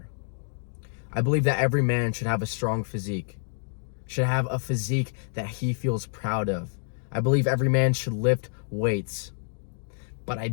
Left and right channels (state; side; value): silent; right; 60 dB below the other